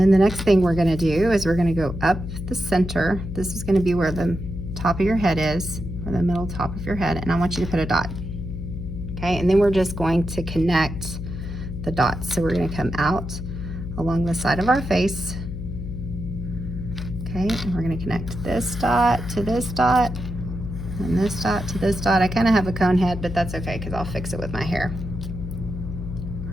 the next thing we're gonna do is we're gonna go up the center. This is gonna be where the top of your head is, or the middle top of your head, and I want you to put a dot. Okay, and then we're just going to connect the dots. So we're going to come out along the side of our face. Okay, and we're going to connect this dot to this dot, and this dot to this dot. I kind of have a cone head, but that's okay because I'll fix it with my hair.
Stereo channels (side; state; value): left; noise; hum, 7 dB below the sound